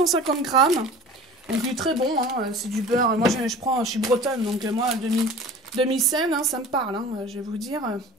grammes. Donc il est très bon, hein, c'est du beurre. Moi je suis bretonne, donc moi demi-sel, hein, ça me parle. Hein, je vais vous dire,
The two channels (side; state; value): both; normal; correlation 0.41